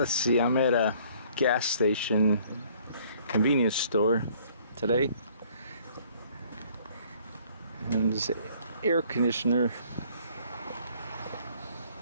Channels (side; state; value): both; inverted; correlation -0.59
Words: see, I'm at a gas station convenience store today, and there's an air conditioner.